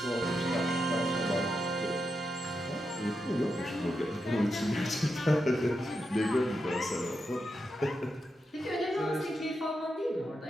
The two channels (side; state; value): both; normal; correlation 0.86